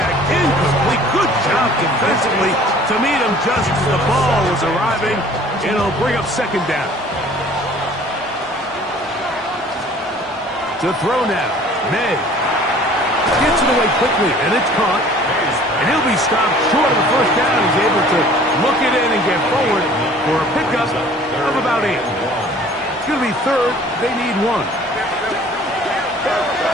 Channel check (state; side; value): normal; both; correlation 0.51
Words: Incomplete. Good job defensively to meet him just as the ball was arriving. It'll bring up second down. To throw now. May gets it away quickly, and it's caught. And he'll be stopped short of the first down. He's able to look it in and get forward for a pickup of about 8. It's going to be third. They need 1.